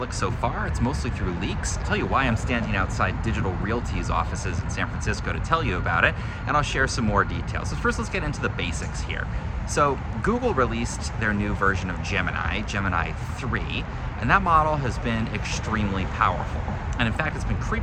so far. It's mostly through leaks. I'll tell you why I'm standing outside Digital Realty's offices in San Francisco to tell you about it, and I'll share some more details. So first, let's get into the basics here. So Google released their new version of Gemini 3, and that model has been extremely powerful. And in fact, it's been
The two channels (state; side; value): identical; both; correlation 1.00